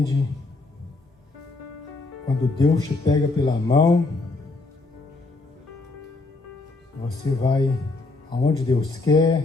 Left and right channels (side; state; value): right; quieter; 3.4 dB